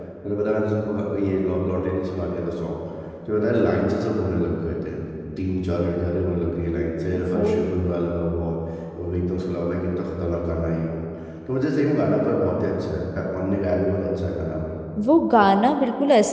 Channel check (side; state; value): both; identical; correlation 1.00